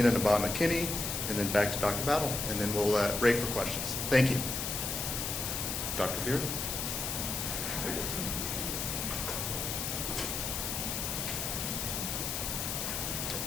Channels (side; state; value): left; noise; hiss, 2 dB below the sound